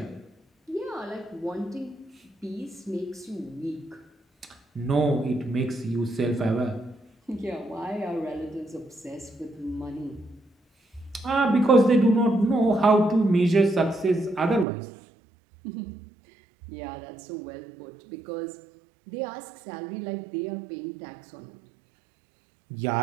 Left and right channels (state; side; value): drops out; left; at 14.7 s